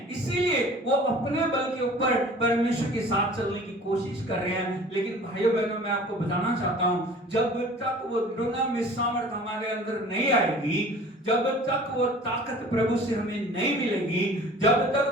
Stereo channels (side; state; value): both; normal; correlation 0.46